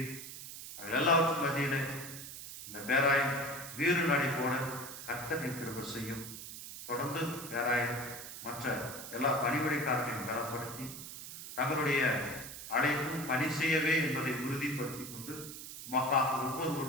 அவர்கள் எல்லாவற்றும் மத்தியிலே இந்த பேராயம் வீறு நடை போட கர்த்தர் கிருபை செய்யும். தொடர்ந்து பேராயம் மற்ற எல்லா பணிபுரிக்காரர்களையும் பலப்படுத்தி தங்களுடைய அழைப்பும் பணி செய்யவே என்பதை உறுதிப்படுத்திக் கொண்டு மக்களாக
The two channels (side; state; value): right; noise; hiss, 10 dB below the sound